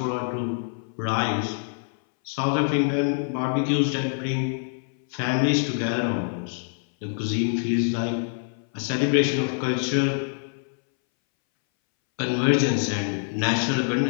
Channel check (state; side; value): silent; right; 61 dB below the other